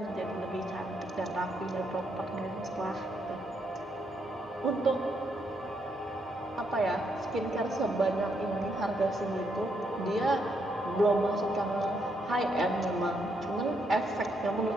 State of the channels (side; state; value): both; normal; correlation 0.77